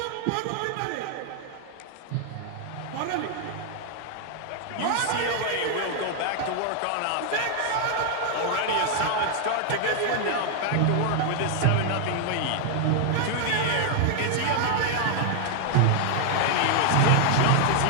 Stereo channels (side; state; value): both; different; correlation 0.00